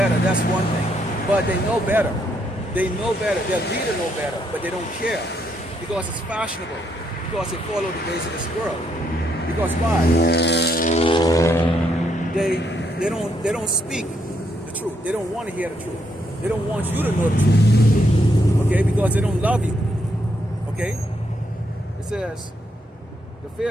that's one thing. But they know better. They know better. Their leader know better, but they don't care because it's fashionable. Because they follow the ways of this world. Because why? They don't speak the truth. They don't want to hear the truth. They don't want you to know the truth. Okay, because they don't love you. Okay? It says, the fear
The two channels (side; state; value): both; normal; correlation 0.76